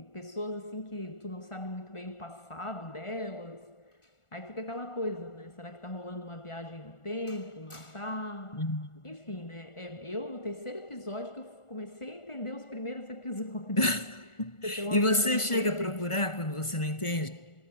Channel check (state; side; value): late; right; 1.4 ms